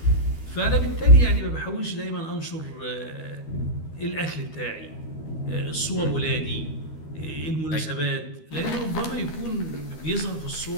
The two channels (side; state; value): right; late; 13 ms